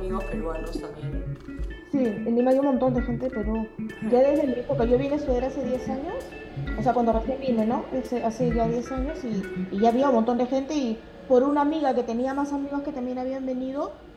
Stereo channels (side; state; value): both; identical; correlation 1.00